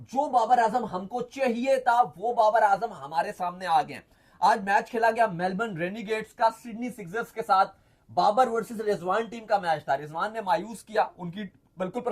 जो बाबर आजम हमको चाहिए था वो बाबर आजम हमारे सामने आ गए। आज मैच खेला गया मेलबर्न रेनिगेट्स का सिडनी सिक्सर्स के साथ। बाबर वर्सेस रिजवान टीम का मैच था। रिजवान ने मायूस किया, उनकी बिल्कुल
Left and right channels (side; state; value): both; identical; correlation 1.00